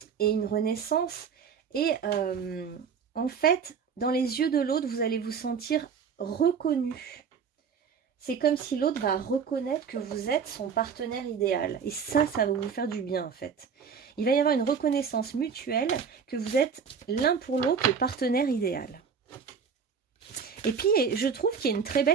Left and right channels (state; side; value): quieter; left; 6.4 dB